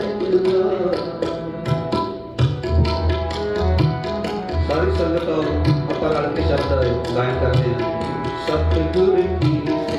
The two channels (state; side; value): identical; both; correlation 1.00